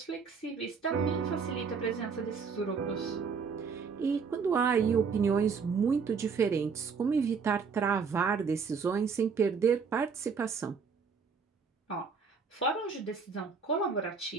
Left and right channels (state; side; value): quieter; left; 5.6 dB